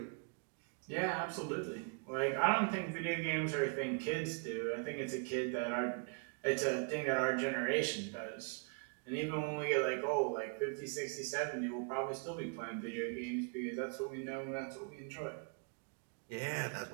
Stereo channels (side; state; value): left; quieter; 37.7 dB